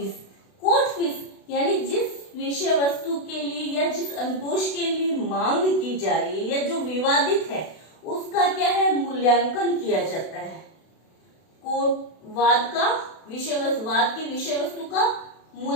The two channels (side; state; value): right; late; 32 ms